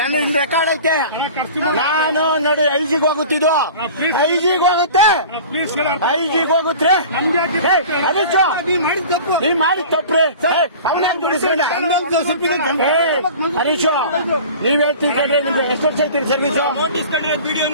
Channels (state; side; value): inverted; both; correlation -0.40